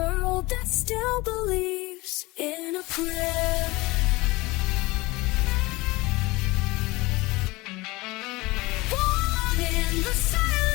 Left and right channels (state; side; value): quieter; right; 21.8 dB